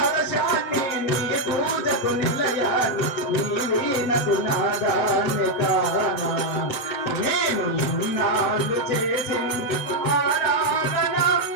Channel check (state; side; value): late; right; 7.5 ms